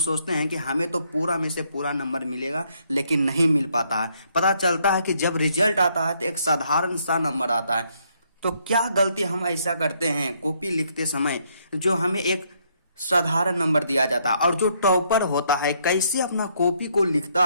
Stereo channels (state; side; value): inverted; both; correlation -0.71